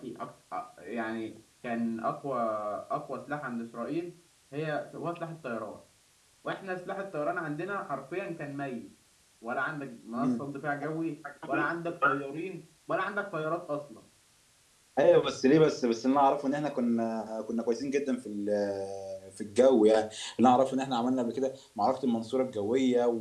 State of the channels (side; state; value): both; identical; correlation 1.00